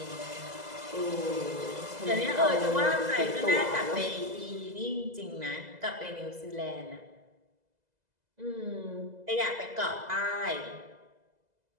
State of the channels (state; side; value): late; left; 2.0 ms